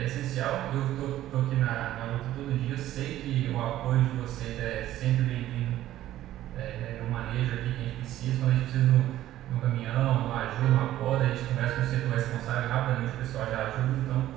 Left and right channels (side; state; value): left; quieter; 13.7 dB